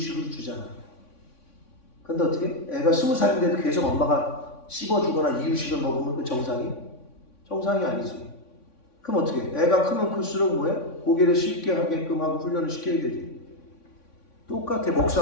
주잖아. 근데 어떻게? 애가 20살인데도 계속 엄마가 씹어주거나 이유식을 먹으면 그 정상이 아니지. 그럼 어떻게? 애가 크면 클수록 뭐야? 고기를 쉽게 하게끔 하고 훈련을 시켜야 되지. 똑같아.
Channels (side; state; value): right; late; 3.5 ms